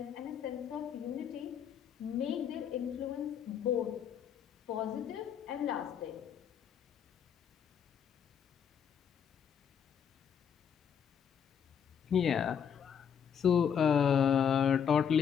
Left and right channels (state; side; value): quieter; right; 7.9 dB